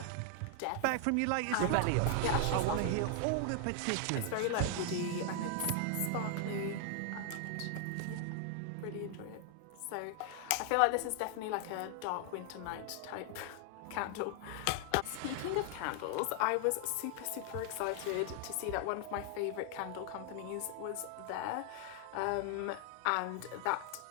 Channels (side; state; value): both; different; correlation 0.00